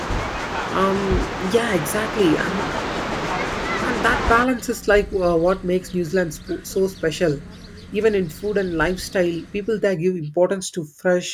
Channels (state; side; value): identical; both; correlation 1.00